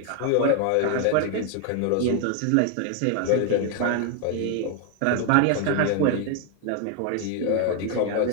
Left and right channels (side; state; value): both; different; correlation 0.00